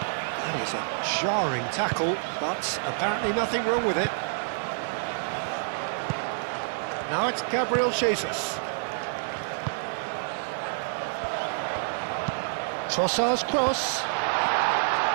That is a jarring tackle, but apparently nothing wrong with it. Now it's Gabriel Jesus. Trossard's cross.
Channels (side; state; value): left; silent; digital silence